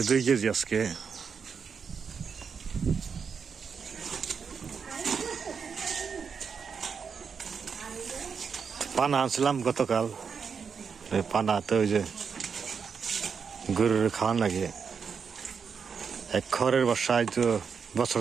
2 কেজি আজকে। পানা আনছিলাম গতকাল, পানা তো ওই যে গরুর খাওয়ান লাগে, এক খড়ের বর্ষায় তো বছর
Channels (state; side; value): quieter; left; 6.1 dB